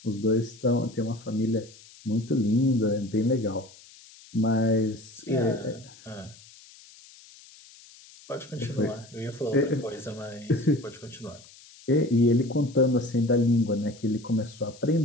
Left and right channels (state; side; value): noise; left; hiss, 22 dB below the sound